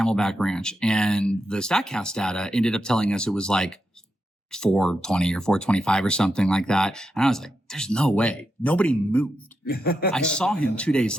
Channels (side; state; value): both; normal; correlation 0.86